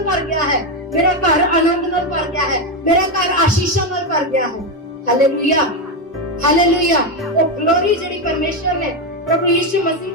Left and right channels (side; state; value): both; normal; correlation 0.09